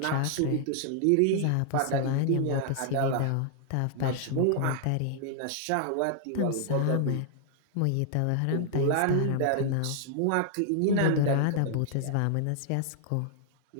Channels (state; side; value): different; both; correlation 0.00